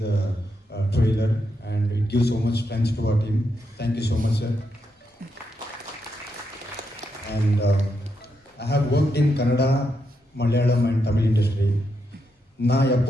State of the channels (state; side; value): normal; both; correlation 0.82